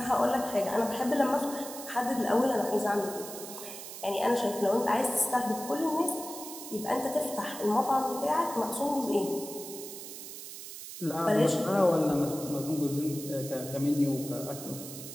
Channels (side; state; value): right; noise; hiss, 11 dB below the sound